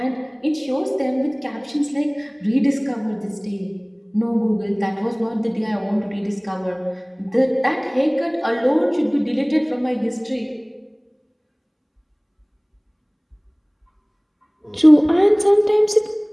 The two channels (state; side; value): identical; both; correlation 1.00